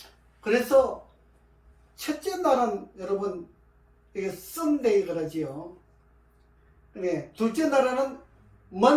그래서 첫째 날은 여러분 이게 썬데이 그러지요. 둘째 날에는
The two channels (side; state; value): both; identical; correlation 1.00